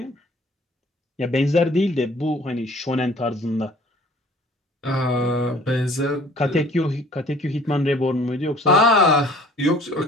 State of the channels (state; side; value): normal; both; correlation 0.53